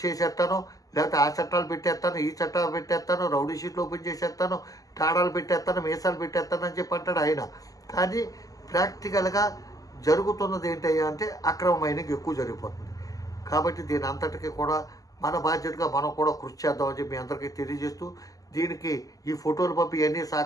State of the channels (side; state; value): right; late; 0.17 ms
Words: చేసేస్తాను, లేకపోతే ఆ చట్టాలు పెట్టేస్తాను, ఈ చట్టాలు పెట్టేస్తాను, రౌడీ షీట్లు ఓపెన్ చేసేస్తాను, తాడాలు పెట్టేస్తాను, మీసాలు పెట్టేస్తాను అని చెప్పి అంటాడు ఆయన. కానీ ప్రాక్టికల్గా జరుగుతున్నది ఏంటయ్యా అంటే అక్రమ మైనింగ్ ఎక్కువ జరిగిపోతుంది. కాబట్టి దీని అంతటికీ కూడా మన బాధ్యతగా మనం కూడా కృషి చేద్దామని చెప్పి మీ అందరికీ తెలియజేస్తూ, దీనికి ఈ ఫోటోలు పంపి ఇవన్నీ